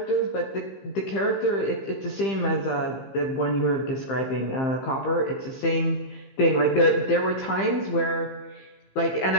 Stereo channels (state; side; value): late; right; 15 ms